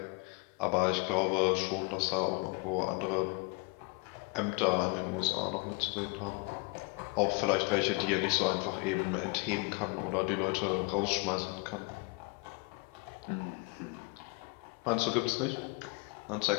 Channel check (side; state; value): right; quieter; 29.7 dB